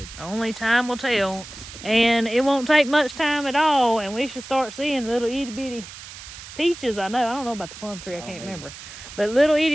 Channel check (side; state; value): right; noise; hiss, 14 dB below the sound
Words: Only time will tell, and it won't take much time at all. And we should start seeing little itty bitty peaches. I don't know about the plum tree. I can't remember, but little